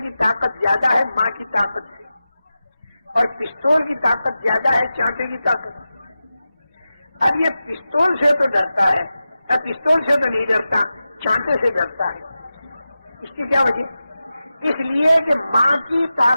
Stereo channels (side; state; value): both; inverted; correlation -0.93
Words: کی طاقت زیادہ ہے ماں کی طاقت سے، اور پستول کی طاقت زیادہ ہے چانٹے کی طاقت۔ اب یہ پستول سے تو ڈرتا ہے، اب پستول سے تو نہیں ڈرتا، چانٹے سے ڈرتا ہے۔ اس کی کیا وجہ؟ اس لیے کہ ماں کی